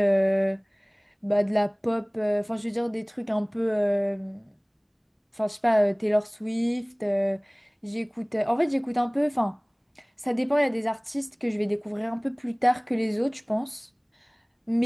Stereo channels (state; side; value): identical; both; correlation 1.00